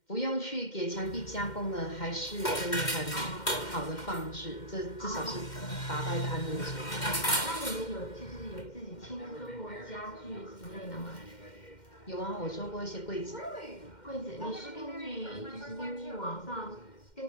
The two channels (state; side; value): late; right; 2.1 ms